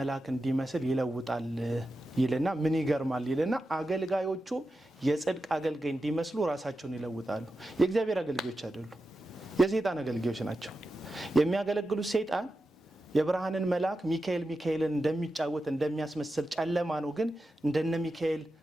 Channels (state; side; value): normal; both; correlation 0.91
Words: እንዲመስል ይለውጣል ይልና ምን ይገርማል ይልና አገልጋዮቹ የጽድቅ አገልጋይ እንዲመስሉ ራሳቸውን ይለውጣሉ። የእግዚአብሔር አገልጋዮች አይደሉም፣ የሰይጣን አገልጋዮች ናቸው። የሚያገለግሉት ሰይጣን የብርሃንን መልአክ ሚካኤልን እንደሚጫወት እንደሚያስመስል ጨለማ ነው፣ ግን እንደነ ሚካኤል